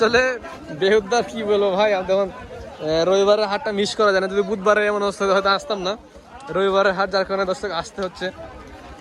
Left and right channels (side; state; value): both; identical; correlation 1.00